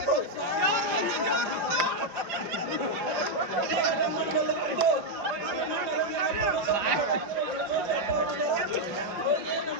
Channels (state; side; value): late; left; 5.2 ms